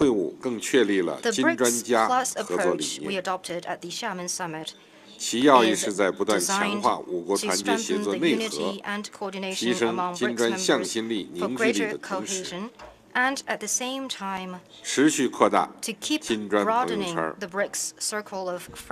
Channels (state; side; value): identical; both; correlation 1.00